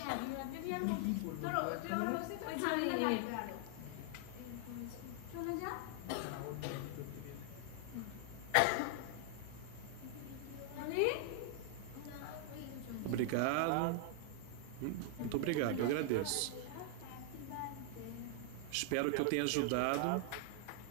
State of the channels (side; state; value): both; different; correlation 0.00